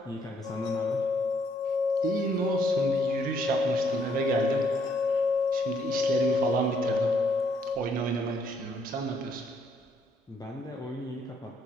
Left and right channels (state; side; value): normal; both; correlation 0.70